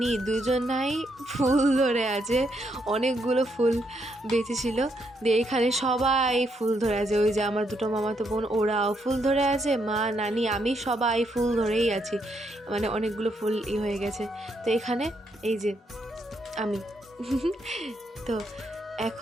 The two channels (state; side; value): normal; both; correlation 0.77